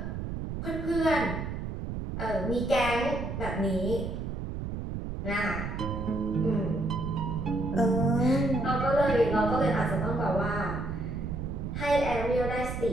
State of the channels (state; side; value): noise; right; rumble, 5 dB below the sound